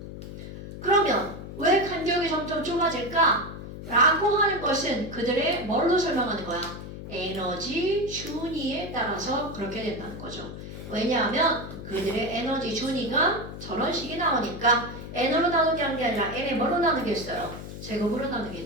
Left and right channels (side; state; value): left; noise; hum, 11 dB below the sound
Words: 그러면 왜 간격이 점점 좁아질까? 라고 하는 것은 그들의 뭘로 설명하는 거야? 에너지 준위에 따라서 그렇게 된다는 거죠. 왜냐하면 그들의 에너지 준위가 저런 식이 나오니까 n으로 나누게 한 게 아니라 n에 뭘로 나누겠어요? 제곱으로